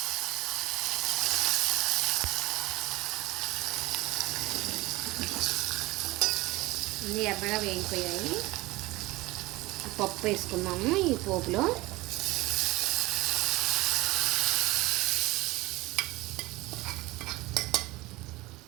అన్నీ ఎర్రగా వేగిపోయాయి. పప్పు వేసుకున్నాము ఈ పోపులో.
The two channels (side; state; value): left; quieter; 20.4 dB